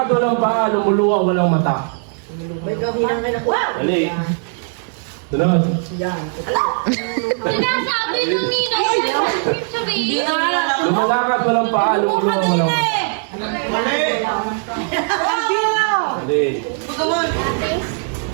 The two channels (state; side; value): silent; left; 59 dB below the other